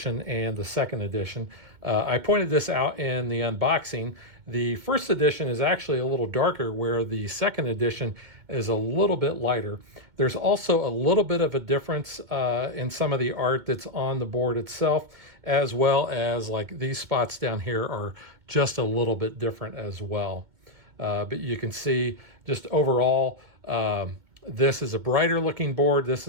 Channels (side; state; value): left; late; 2.2 ms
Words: and the second edition. I pointed this out in the unboxing. The first edition is actually a little darker, where the second edition is a little bit lighter. There's also a little bit of a difference in some of the art that's on the board itself, as well as like these spots down here are just a little bit different as well. But you can see just overall, this is a brighter looking board. This